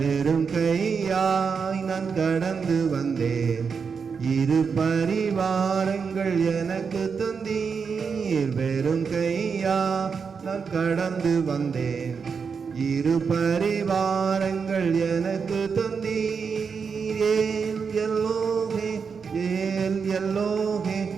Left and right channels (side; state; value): left; quieter; 5.8 dB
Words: கையாய் நான் கடந்து வந்தேன், இரு பரிவாரங்கள் எனக்கு தந்தீர். வெறும் கையா நான் கடந்து வந்தேன், இரு பரிவாரங்கள் எனக்கு தந்தீர். ஏல் எல்லோகே, ஏல் எல்லோகே,